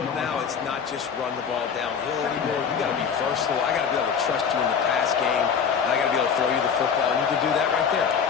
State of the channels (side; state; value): right; quieter; 6.8 dB